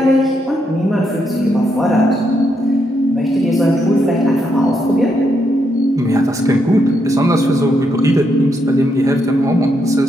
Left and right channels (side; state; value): both; normal; correlation 0.79